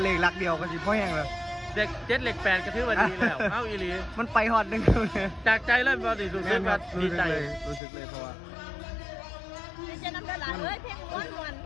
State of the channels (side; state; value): right; drops out; at 7.8 s